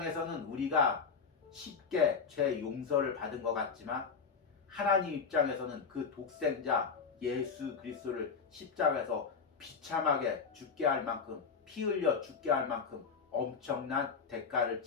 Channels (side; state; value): right; quieter; 5.6 dB